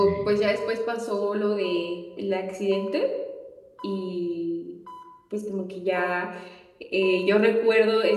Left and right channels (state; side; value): identical; both; correlation 1.00